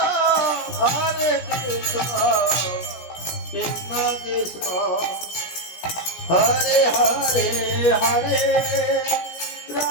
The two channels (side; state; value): right; late; 17 ms